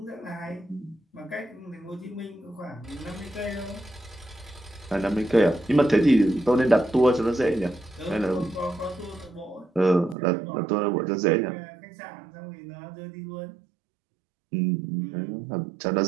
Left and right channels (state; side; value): drops out; left; at 10.2 s